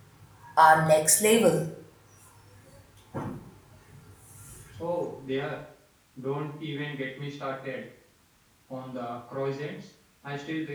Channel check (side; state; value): both; identical; correlation 1.00